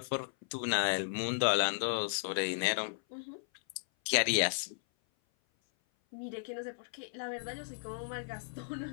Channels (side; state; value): right; silent; 55 dB below the other